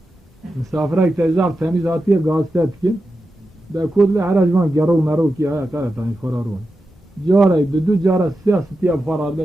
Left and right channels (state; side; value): normal; both; correlation 0.90